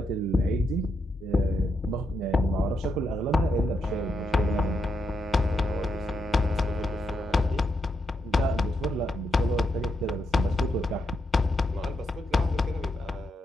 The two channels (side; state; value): both; normal; correlation 0.82